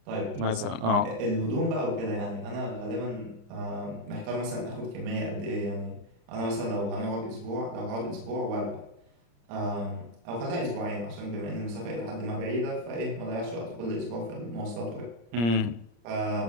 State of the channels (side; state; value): left; late; 34 ms